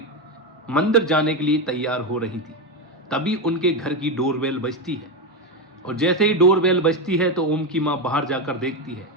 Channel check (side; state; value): both; normal; correlation 0.11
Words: मंदिर जाने के लिए तैयार हो रही थी। तभी उनके घर की डोरबेल बजती है और जैसे ही डोरबेल बजती है तो ओम की माँ बाहर जाकर देखती है